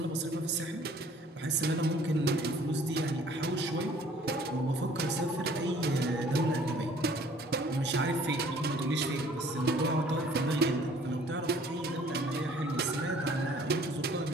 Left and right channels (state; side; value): normal; both; correlation 0.55